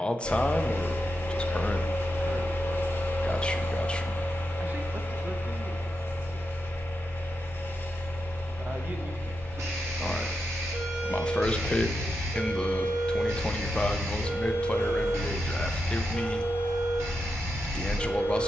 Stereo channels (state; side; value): normal; both; correlation 0.87